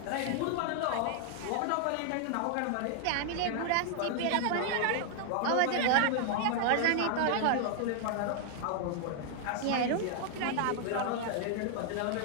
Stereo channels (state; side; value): different; both; correlation 0.00